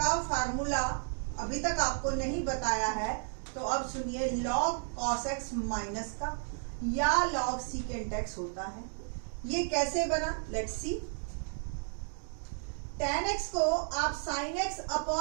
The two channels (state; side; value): silent; left; 56 dB below the other